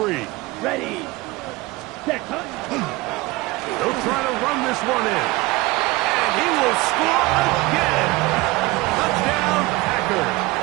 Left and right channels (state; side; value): quieter; left; 21.3 dB